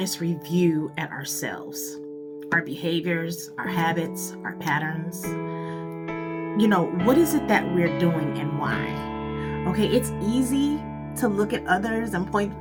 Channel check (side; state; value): both; identical; correlation 1.00